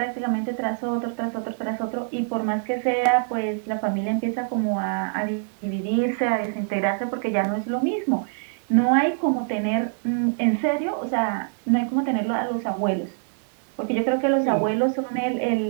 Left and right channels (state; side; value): silent; left; digital silence